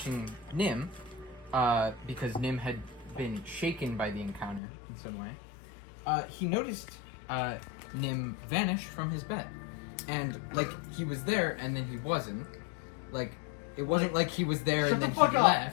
Nim, because Nim had been shaken by the encounter in some way, he noticed Nim vanish from his bed. And, like, he was there and then he wasn't. Like, it wasn't like he was there and then he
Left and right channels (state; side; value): drops out; right; at 4.6 s